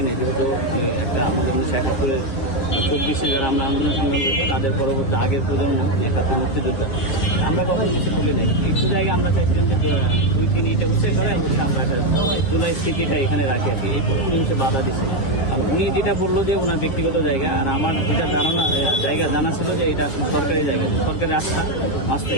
নাই, যেহেতু একটা আমাদের 1971-এর 24-এ যারা আমরা আন্দোলন সংগ্রাম করেছি তাদের পরবর্তী আগের প্রজন্ম 71 মুক্তিযোদ্ধা, আমরা কখনো কিছু বলি নাই। একটু জায়গায় আমরা চাইছিলাম যে 2-3 ইটে উঠে করে অবশ্যই আমরা একটা জুলাই স্মৃতিটা এখানে রাখি আর কি। এরপরে উনি হচ্ছে বাধা দিচ্ছে। আর উনি যেটা বললো যে ওনার ব্যক্তিগত জায়গা, আর আমার যেটা জানা ছিল যে এটা সরকারি জায়গা, সরকারি রাস্তা মাছটা,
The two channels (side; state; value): right; late; 7.4 ms